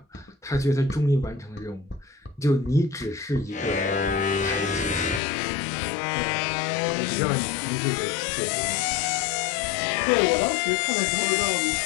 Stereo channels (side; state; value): right; drops out; at 5.2 s